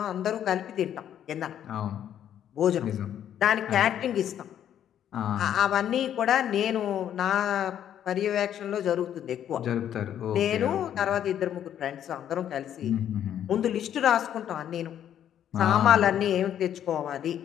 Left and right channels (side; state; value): right; quieter; 10.2 dB